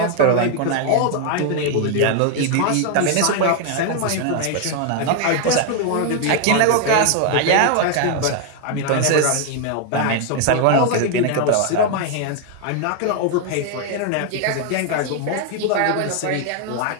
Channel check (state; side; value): different; both; correlation 0.00